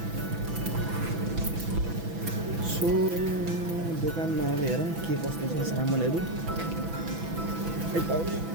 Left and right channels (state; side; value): late; left; 6.0 ms